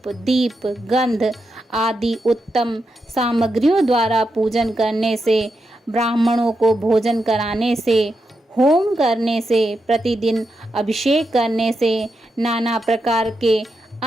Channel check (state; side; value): normal; both; correlation 0.86